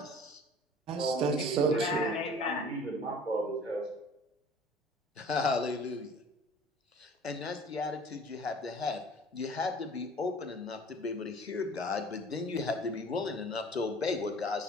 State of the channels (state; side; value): normal; both; correlation 0.47